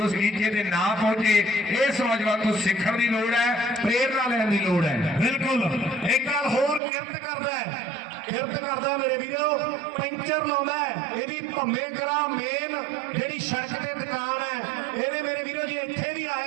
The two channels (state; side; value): drops out; left; at 6.8 s